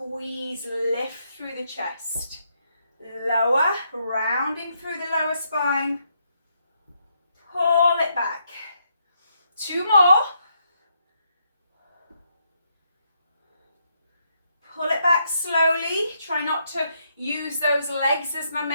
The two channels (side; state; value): both; inverted; correlation -0.77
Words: lift through the chest. Lower, rounding through the lower spine. Pull it back. 2 more. Pull it back slowly. Try not to use those legs as